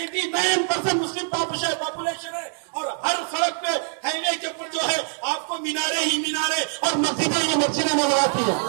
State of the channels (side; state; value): left; silent; 56 dB below the other